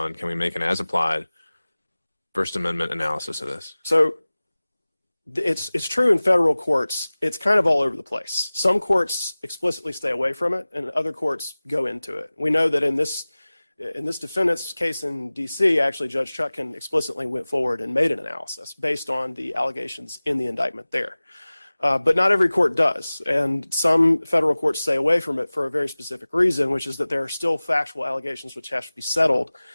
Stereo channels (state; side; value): inverted; both; correlation -0.98